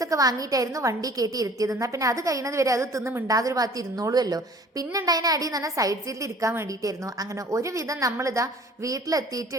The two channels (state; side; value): normal; both; correlation 0.50